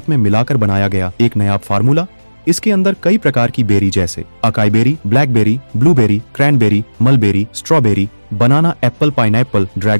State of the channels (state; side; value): inverted; both; correlation -1.00